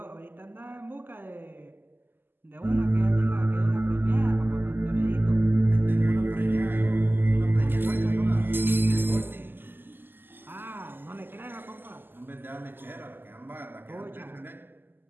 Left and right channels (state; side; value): late; left; 0.094 ms